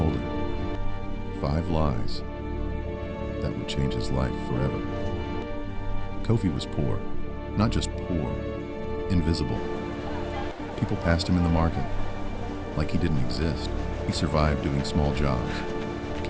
him 5 lies that would change his life forever. Kofi was poor, not just poor, invisible. People passed him in the market like he didn't exist. He survived doing small jobs,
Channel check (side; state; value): both; identical; correlation 1.00